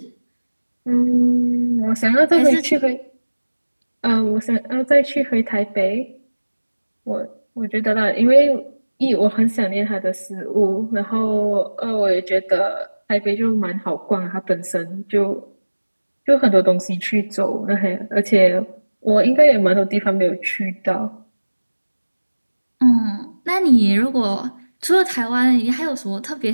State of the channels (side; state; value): both; inverted; correlation -1.00